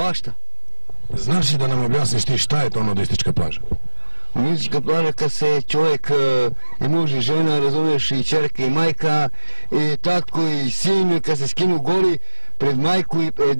Znaš li da nam objasniš ti šta je to nudistička plaža? Nudistička plaža kad se čovjek i muž i žena, razumeš, i čerka i majka, i tatko i sin, kad se skinu goli pred majku i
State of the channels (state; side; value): inverted; both; correlation -1.00